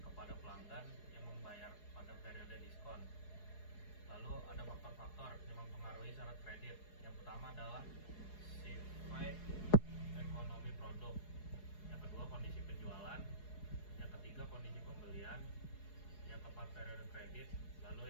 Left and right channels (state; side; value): late; right; 4.8 ms